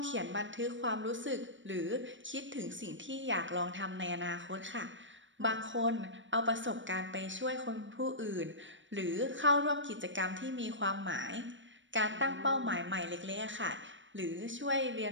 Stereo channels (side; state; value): left; late; 0.55 ms